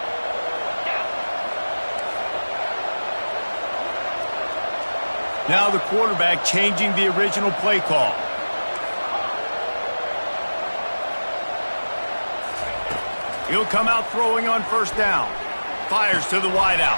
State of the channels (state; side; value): inverted; both; correlation -1.00